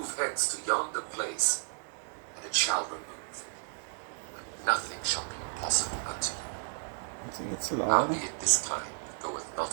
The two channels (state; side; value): silent; left; 56 dB below the other